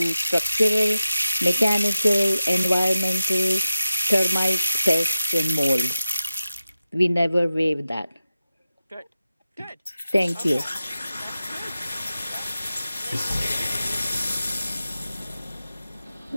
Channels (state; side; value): inverted; both; correlation -0.93